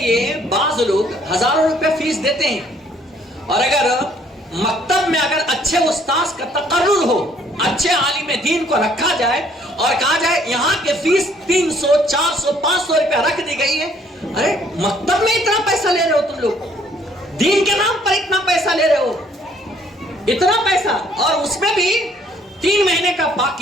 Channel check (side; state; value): both; normal; correlation 0.62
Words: بعض لوگ ہزاروں روپے فیس دیتے ہیں, اور اگر مکتب میں اگر اچھے استاذ کا تقرر ہو, اچھے عالم دین کو رکھا جائے اور کہا جائے یہاں کے فیس 300 400 500 روپے رکھ دی گئی ہے, ارے مکتب میں اتنا پیسہ لے رہے ہو تم لوگ, دین کے نام پر اتنا پیسہ لے رہے ہو, اتنا پیسہ, اور اس میں بھی 3 مہینے کا